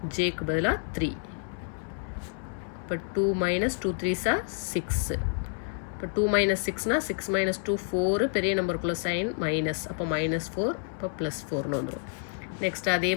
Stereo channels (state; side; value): silent; right; digital silence